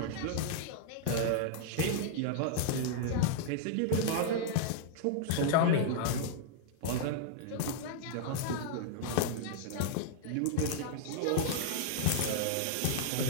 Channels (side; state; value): both; different; correlation -0.01